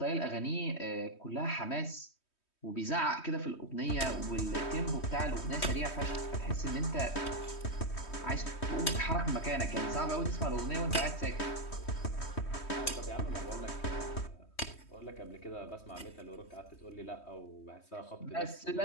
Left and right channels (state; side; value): late; right; 3.2 ms